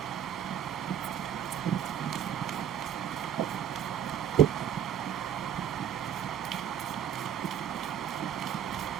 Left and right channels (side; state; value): left; quieter; 9.5 dB